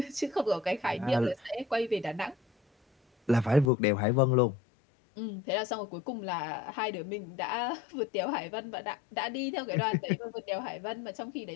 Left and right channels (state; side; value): drops out; right; at 3.7 s